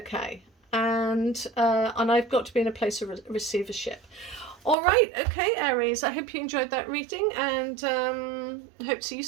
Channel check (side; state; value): left; drops out; at 4.8 s